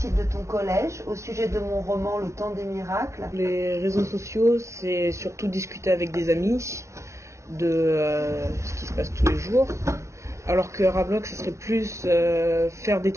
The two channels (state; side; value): late; left; 0.14 ms